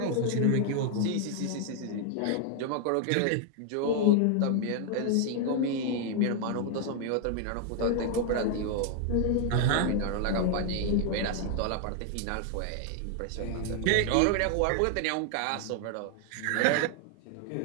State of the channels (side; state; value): both; different; correlation 0.00